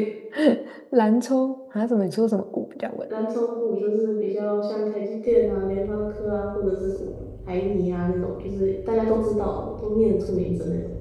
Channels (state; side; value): identical; both; correlation 1.00